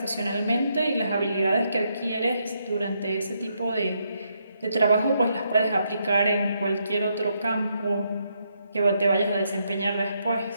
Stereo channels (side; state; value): both; inverted; correlation -0.78